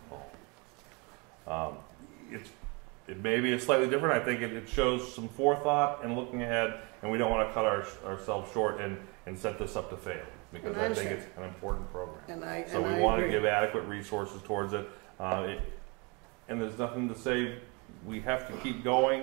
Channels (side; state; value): left; quieter; 30.0 dB